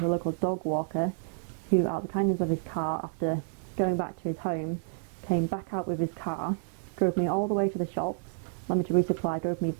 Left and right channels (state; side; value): silent; left; 58 dB below the other